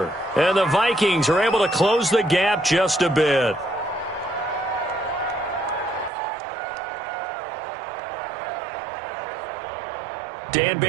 And the Vikings are able to close the gap just a bit. Dan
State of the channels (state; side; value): drops out; left; at 6.1 s